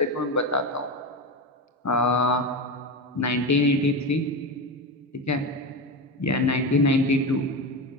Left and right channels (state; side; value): normal; both; correlation 0.19